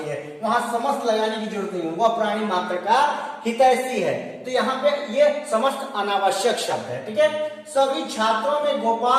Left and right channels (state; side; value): identical; both; correlation 1.00